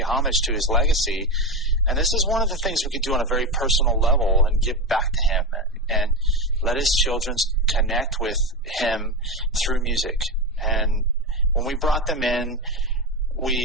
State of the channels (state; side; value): normal; both; correlation 0.16